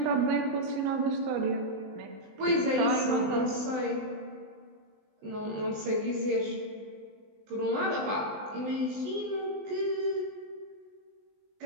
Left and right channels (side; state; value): left; late; 20 ms